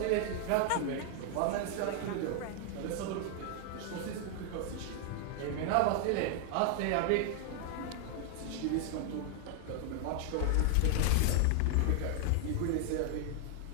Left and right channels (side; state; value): both; different; correlation 0.00